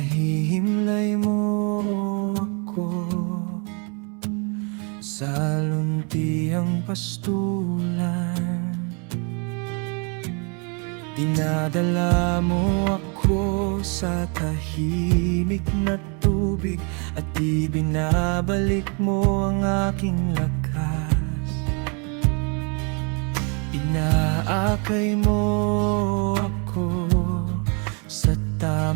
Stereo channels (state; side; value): quieter; left; 35.0 dB